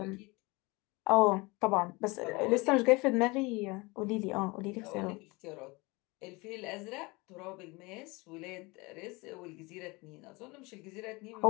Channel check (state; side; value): quieter; right; 25.1 dB